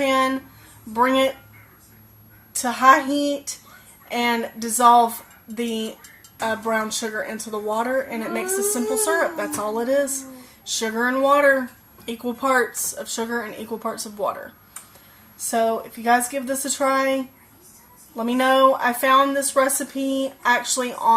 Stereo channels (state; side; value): identical; both; correlation 1.00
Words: Bring it to high heat and dissolve the brown sugar into the water, and it makes a simple syrup. That's all it is. Sugar and water, equal parts of sugar and equal parts of water. So if you guys give this a try, let me know. I found this recipe actually